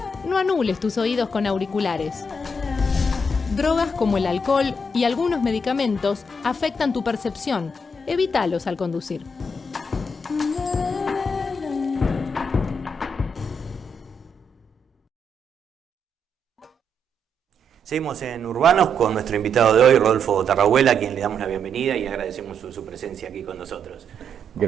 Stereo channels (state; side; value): normal; both; correlation 0.77